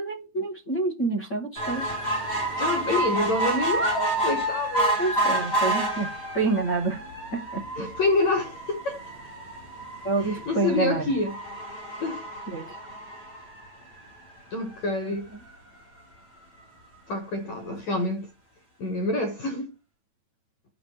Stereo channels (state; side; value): late; right; 8.9 ms